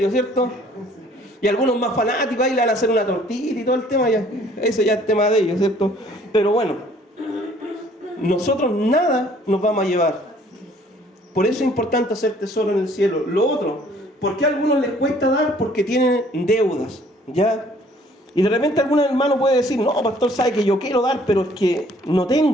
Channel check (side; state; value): both; normal; correlation 0.58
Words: ¿cierto? Y algunos más fanáticos ahí le van a hacer una tortita y todo el tema, ya. Eso ya es tema de ellos, ¿cierto? Pero bueno, nosotros nada nos vamos a llevar. Por eso es importante hacer tesoro en el cielo. Lo otro, ¿por qué a algunos les cuesta dar? Porque tienen deudas, ¿ya? Y de repente algún hermano puede decir, no, pastor, sabe que yo quiero dar, pero es que no